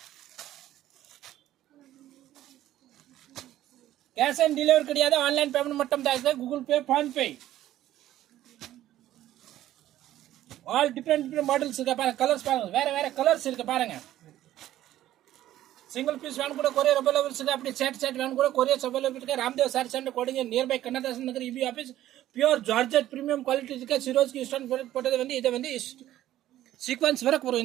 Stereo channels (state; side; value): quieter; left; 13.5 dB